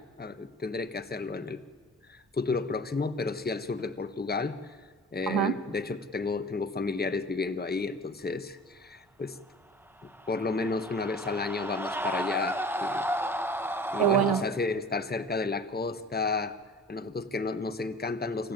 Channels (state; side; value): normal; both; correlation 0.41